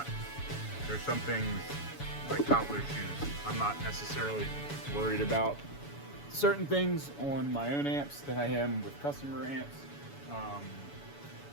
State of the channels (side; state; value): right; late; 7.0 ms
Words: there's some things like cobbler shoes. I'm not necessarily worried about certain things on my own amps that I am with customer amps.